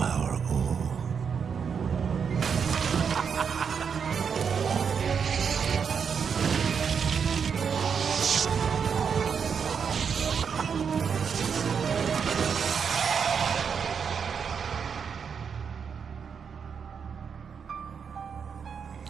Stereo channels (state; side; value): quieter; left; 6.6 dB